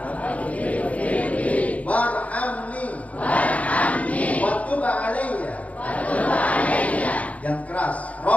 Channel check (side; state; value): right; late; 0.068 ms